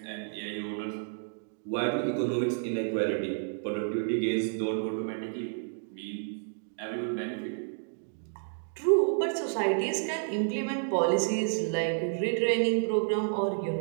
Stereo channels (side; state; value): left; silent; digital silence